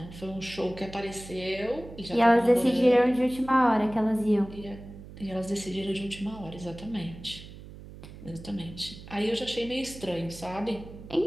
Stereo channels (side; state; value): right; noise; hum, 16 dB below the sound